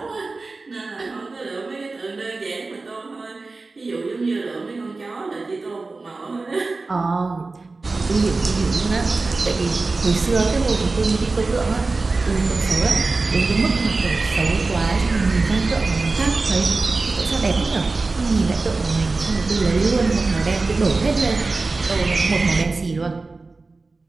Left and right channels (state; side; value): quieter; left; 3.7 dB